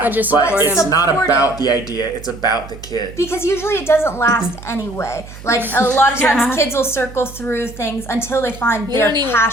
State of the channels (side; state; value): right; noise; hum, 16 dB below the sound